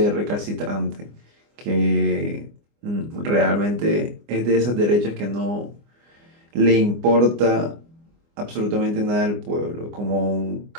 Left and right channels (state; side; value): late; left; 24 ms